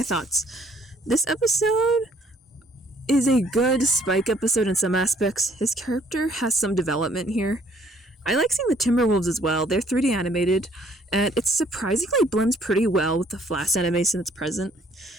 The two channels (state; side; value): normal; both; correlation 0.62